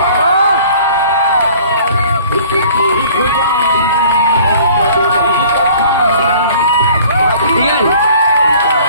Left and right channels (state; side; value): inverted; both; correlation -0.51